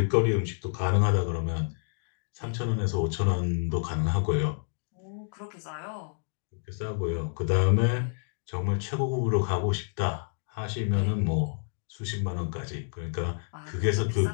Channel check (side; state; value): right; silent; digital silence